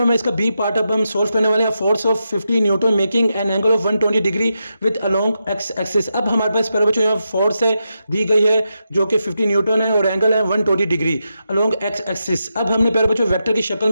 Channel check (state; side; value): inverted; both; correlation -0.86